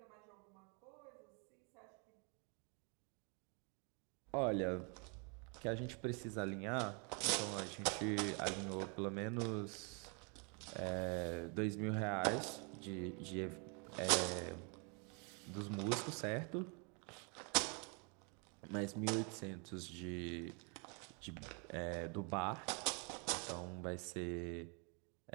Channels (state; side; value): quieter; left; 35.5 dB